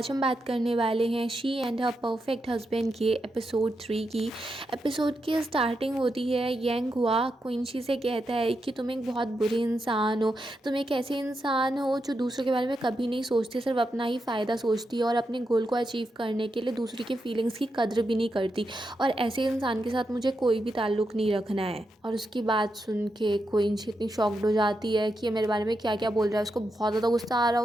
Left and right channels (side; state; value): both; normal; correlation 0.85